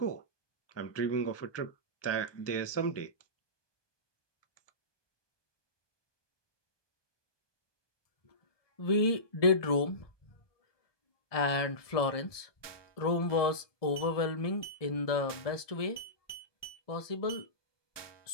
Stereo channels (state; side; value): late; right; 1.2 ms